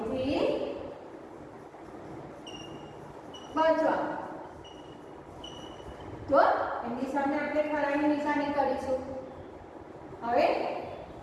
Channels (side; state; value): both; identical; correlation 1.00